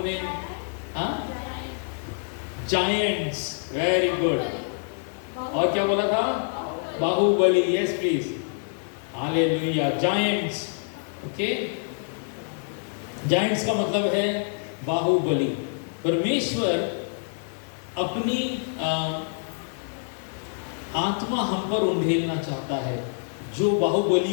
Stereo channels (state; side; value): silent; right; digital silence